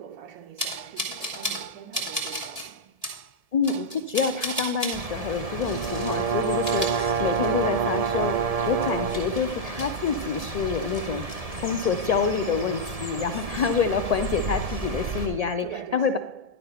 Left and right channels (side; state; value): left; late; 1.7 ms